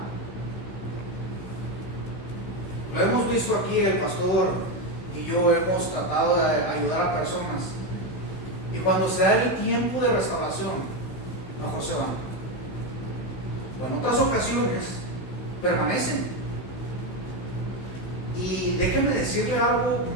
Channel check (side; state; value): right; late; 16 ms